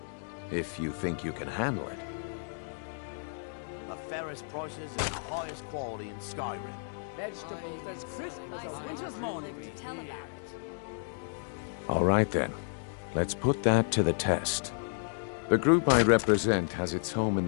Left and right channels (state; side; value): silent; right; digital silence